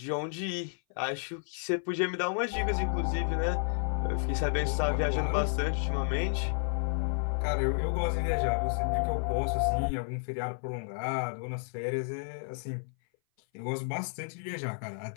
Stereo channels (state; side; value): silent; right; 57 dB below the other